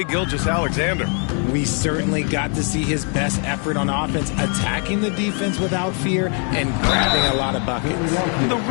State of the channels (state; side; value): quieter; right; 39.4 dB